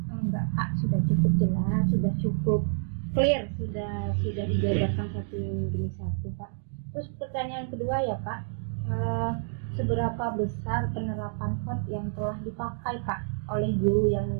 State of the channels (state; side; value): silent; left; digital silence